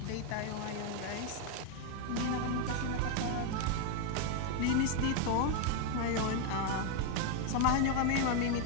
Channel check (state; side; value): different; both; correlation 0.01